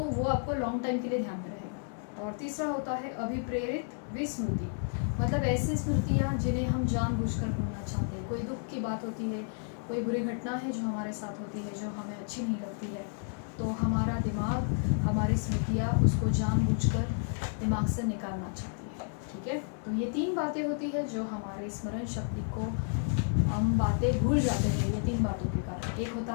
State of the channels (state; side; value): silent; right; 57 dB below the other